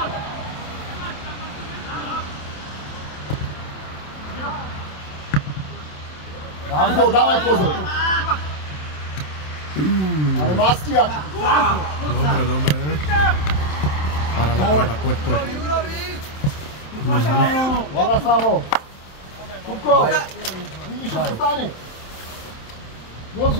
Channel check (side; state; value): right; late; 27 ms